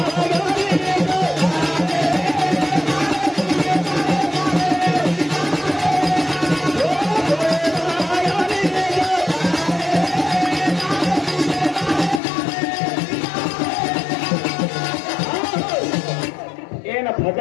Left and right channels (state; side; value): drops out; right; at 12.2 s